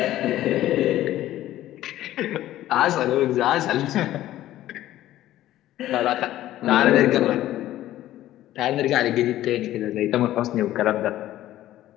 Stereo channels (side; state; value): right; quieter; 14.0 dB